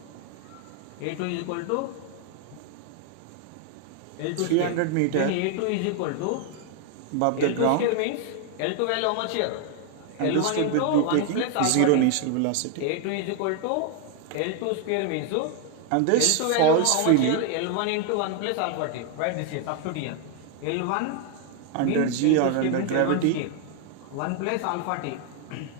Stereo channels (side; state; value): both; different; correlation 0.00